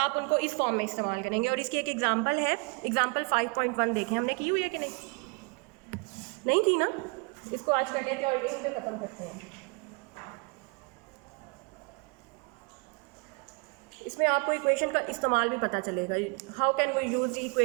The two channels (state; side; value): quieter; left; 32.5 dB